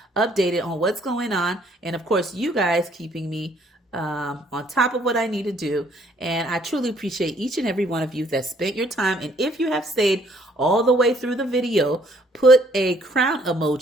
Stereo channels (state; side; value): normal; both; correlation 0.64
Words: updated on what's going on. And of course, you guys keeping me on top of what I need to do. And I truly appreciate each and every one of you that spent your time. And if you have stayed all the way through the video, put a crown